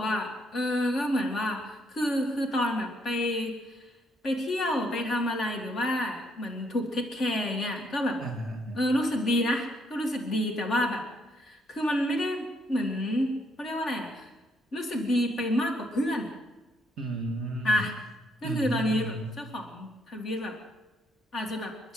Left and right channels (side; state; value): both; normal; correlation 0.72